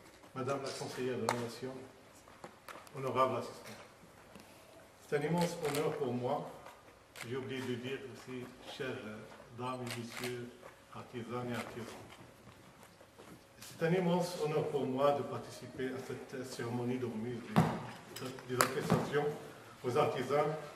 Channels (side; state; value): both; identical; correlation 1.00